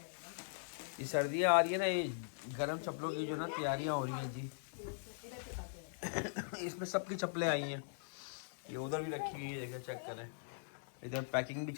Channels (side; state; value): right; silent; digital silence